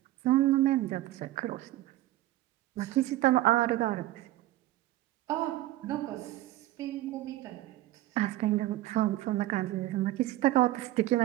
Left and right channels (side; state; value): left; quieter; 15.7 dB